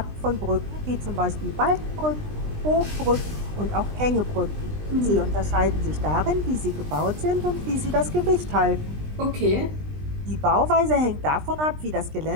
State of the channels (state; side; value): late; left; 20 ms